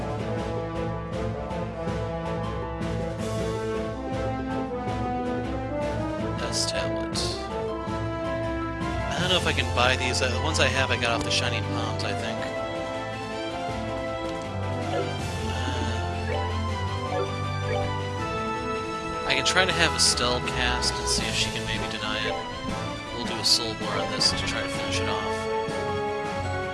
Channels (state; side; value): identical; both; correlation 1.00